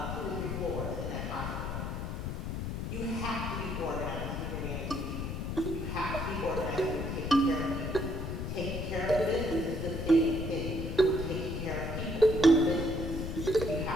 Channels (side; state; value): left; noise; rumble, 4 dB below the sound